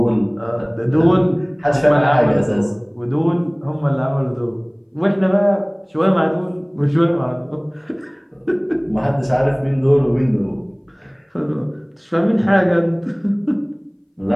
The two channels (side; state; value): both; identical; correlation 1.00